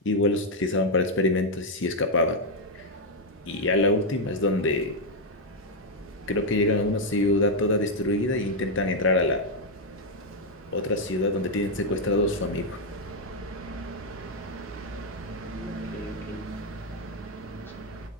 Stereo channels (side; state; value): both; normal; correlation 0.01